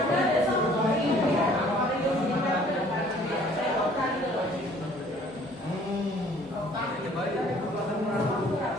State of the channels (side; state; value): both; normal; correlation 0.56